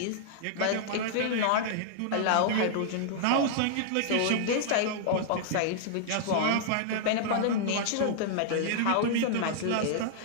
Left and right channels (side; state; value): both; different; correlation -0.01